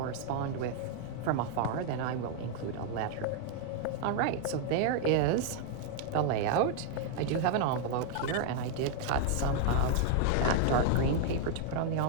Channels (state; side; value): different; both; correlation 0.00